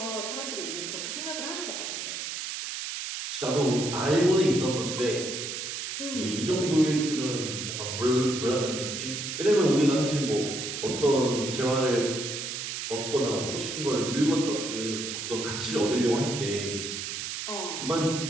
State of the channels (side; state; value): right; noise; hiss, 5 dB below the sound